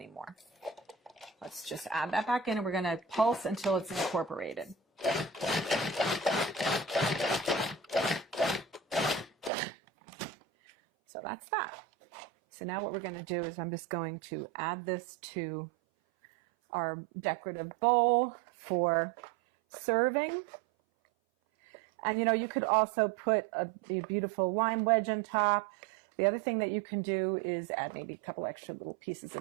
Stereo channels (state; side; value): drops out; left; at 9.5 s